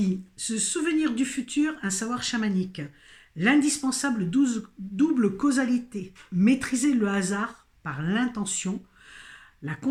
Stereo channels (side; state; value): both; identical; correlation 1.00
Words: se souvenir du futur, un savoir chamanique, l'indispensable double causalité, maîtriser le hasard par l'intention, la